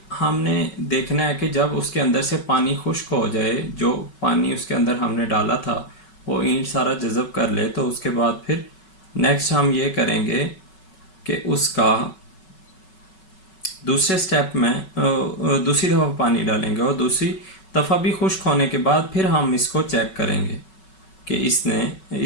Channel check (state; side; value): late; right; 5.3 ms